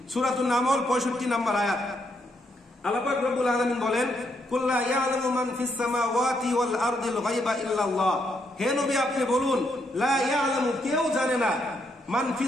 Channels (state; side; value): normal; both; correlation 0.77